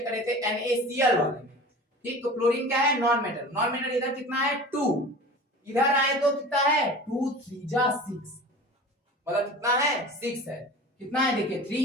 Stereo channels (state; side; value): normal; both; correlation 0.37